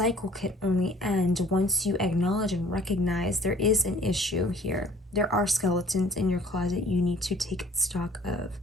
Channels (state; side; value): normal; both; correlation 0.53